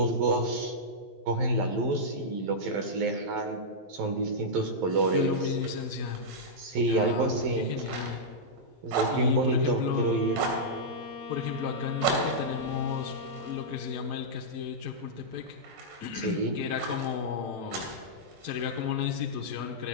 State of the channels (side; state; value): left; late; 12 ms